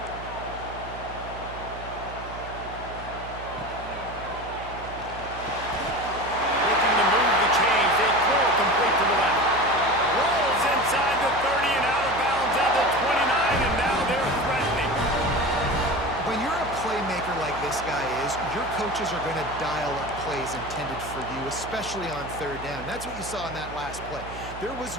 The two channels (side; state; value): right; noise; hum, 13 dB below the sound